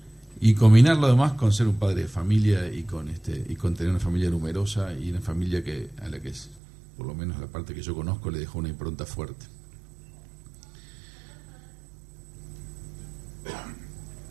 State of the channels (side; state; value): left; drops out; at 6.6 s